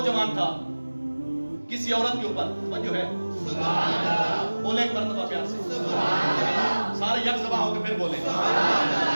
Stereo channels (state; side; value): inverted; both; correlation -1.00